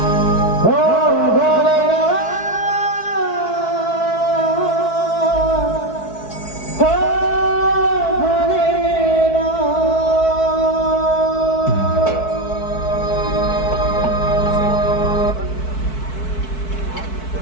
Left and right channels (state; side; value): late; right; 4.6 ms